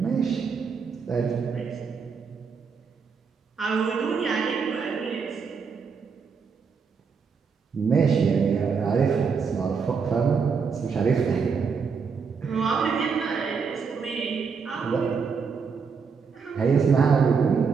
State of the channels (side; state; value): left; quieter; 5.6 dB